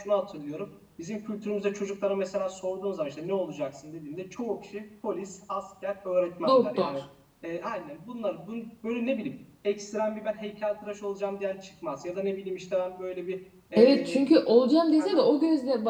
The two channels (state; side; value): identical; both; correlation 1.00